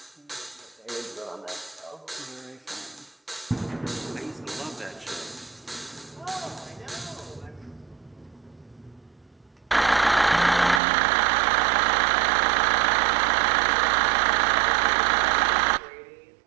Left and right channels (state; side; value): drops out; left; at 10.8 s